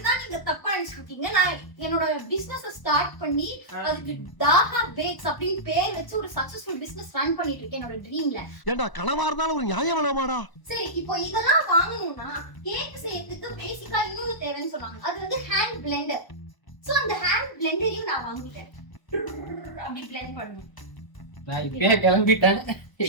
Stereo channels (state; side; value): late; right; 1.0 ms